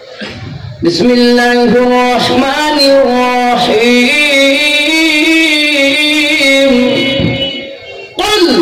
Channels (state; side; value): identical; both; correlation 1.00